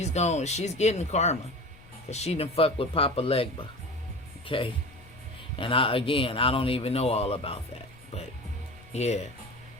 getting karma. Because she done fuck with Papa LEGBA. Okay? And I don't even know all about that. But, yeah.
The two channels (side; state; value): left; noise; rumble, 23 dB below the sound